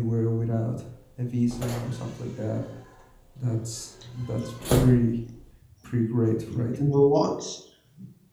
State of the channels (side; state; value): both; identical; correlation 1.00